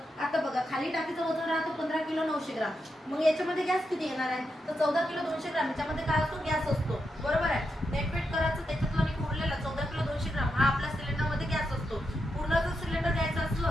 आता बघा, खाली टाकीचं वजन राहतो 15 किलो 900 ग्राम. मग याच्यामध्ये गॅस किती येणार आहे? तर 14 किलो 200 ग्राम. याच्यामध्ये काय असतो? गॅस असतो. बरोबर आहे. नेटवेट करायचं, त्याच्यातला उरलेला 14 किलो 200 ग्राम हा आपल्या सिलेंडरमध्ये गॅस असतो. पूर्ण जर सिलेंडर घ्यायचं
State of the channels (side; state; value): both; normal; correlation 0.85